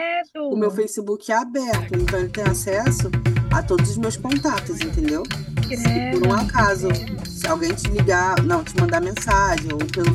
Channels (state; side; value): identical; both; correlation 1.00